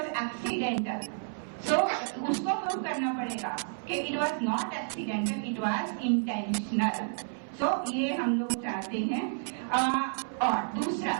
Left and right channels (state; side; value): silent; left; 57 dB below the other